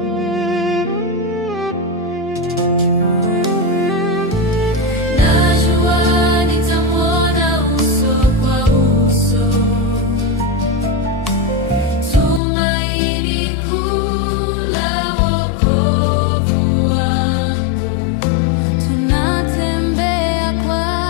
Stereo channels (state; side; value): drops out; right; at 12.4 s